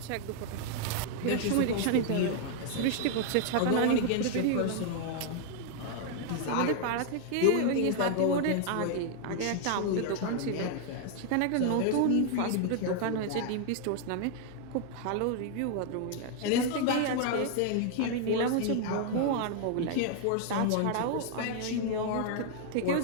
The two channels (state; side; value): different; both; correlation 0.00